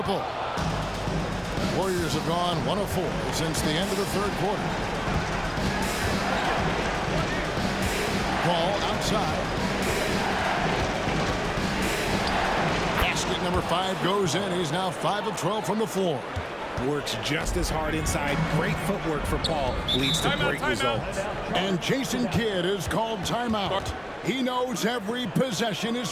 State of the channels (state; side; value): identical; both; correlation 1.00